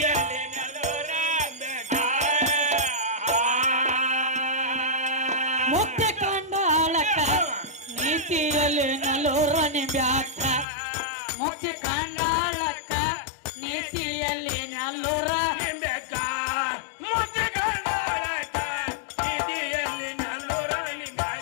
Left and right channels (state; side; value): drops out; right; at 10.7 s